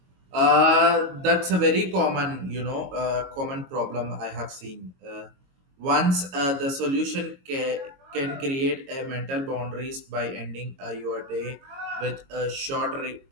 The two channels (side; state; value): left; late; 22 ms